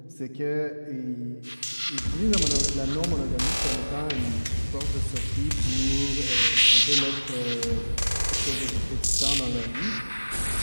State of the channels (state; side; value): inverted; both; correlation -1.00